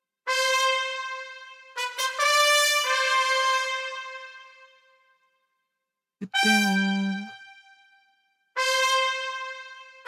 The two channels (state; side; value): identical; both; correlation 1.00